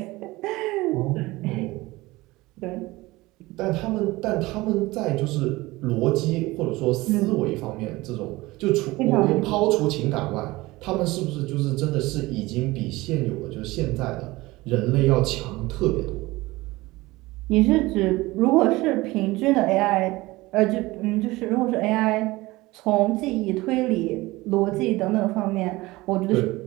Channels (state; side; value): quieter; left; 20.3 dB